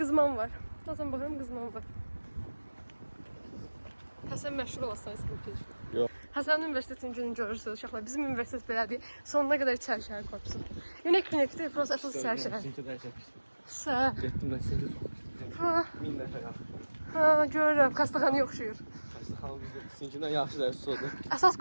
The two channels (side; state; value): both; inverted; correlation -1.00